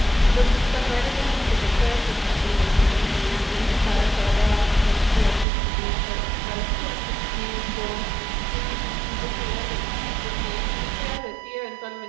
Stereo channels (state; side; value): drops out; left; at 5.5 s